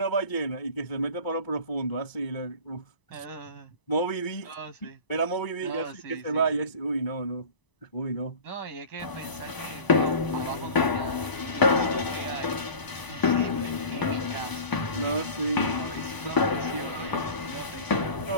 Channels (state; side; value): late; right; 1.0 ms